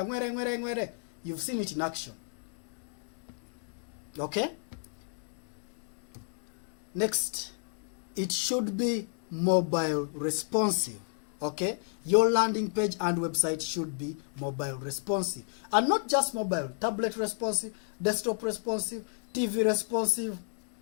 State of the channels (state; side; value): silent; right; 55 dB below the other